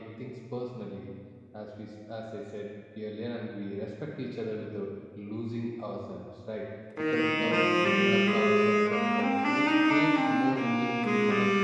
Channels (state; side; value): identical; both; correlation 1.00